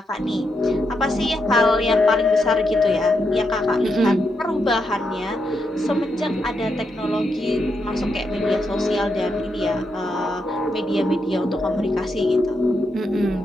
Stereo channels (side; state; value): both; normal; correlation 0.82